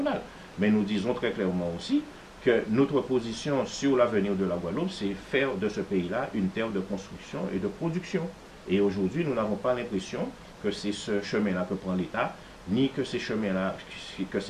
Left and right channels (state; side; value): identical; both; correlation 1.00